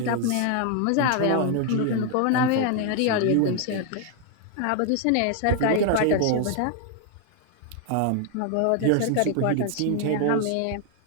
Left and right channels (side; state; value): both; different; correlation 0.00